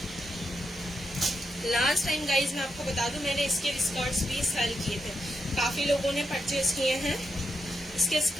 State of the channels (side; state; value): both; normal; correlation 0.84